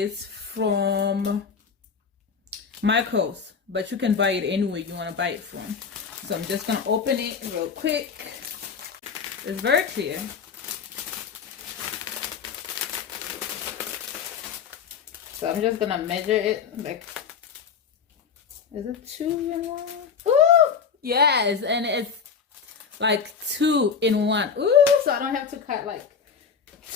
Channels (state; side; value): quieter; right; 6.2 dB